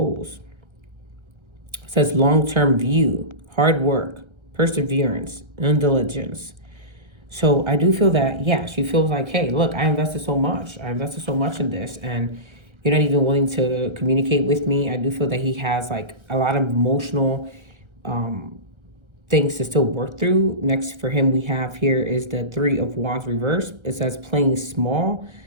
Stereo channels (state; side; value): late; left; 1.3 ms